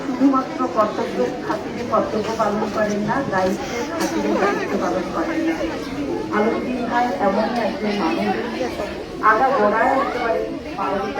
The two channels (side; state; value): both; identical; correlation 1.00